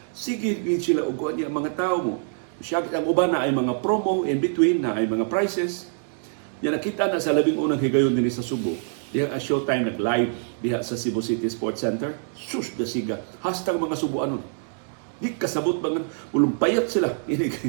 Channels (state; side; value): silent; left; digital silence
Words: sige sila uguan niya mga tao mo. Siya ang uban na ay mga promo in between, na ay mga prices. Yan nakita na sa labing unang higayon din sa Subo. Diha ang showtime nag-live diha sa Cebu City Sports Center. Sus, dasiga. Hashtag mga Subuanon. Di kasabot ba nga, ulumpayat sila.